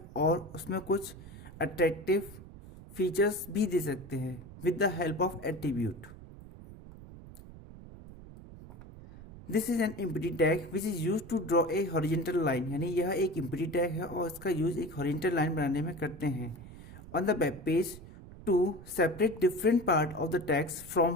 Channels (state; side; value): noise; right; rumble, 16 dB below the sound